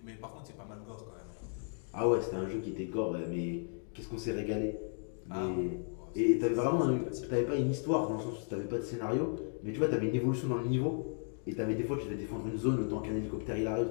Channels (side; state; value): right; silent; 54 dB below the other